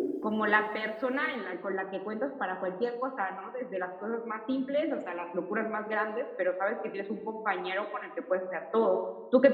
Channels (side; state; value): both; identical; correlation 1.00